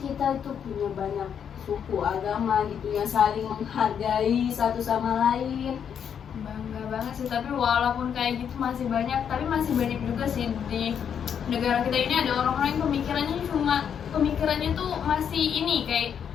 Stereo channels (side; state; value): right; quieter; 8.0 dB